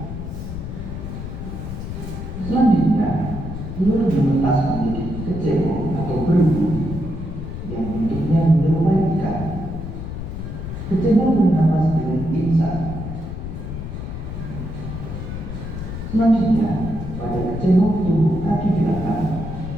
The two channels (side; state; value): left; noise; rumble, 7 dB below the sound